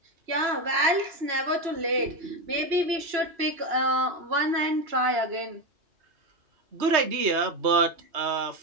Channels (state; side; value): late; left; 2.9 ms